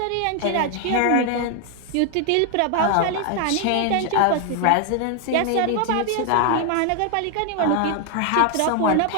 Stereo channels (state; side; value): different; both; correlation 0.00